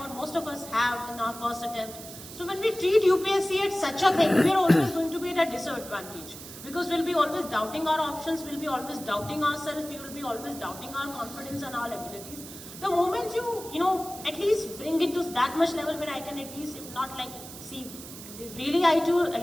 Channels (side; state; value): right; noise; hiss, 14 dB below the sound